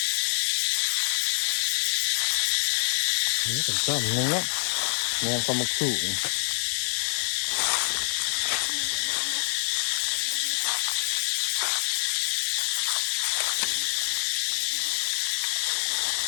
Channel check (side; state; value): right; silent; 61 dB below the other